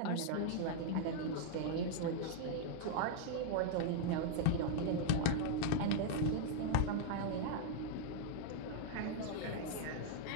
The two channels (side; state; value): both; different; correlation -0.01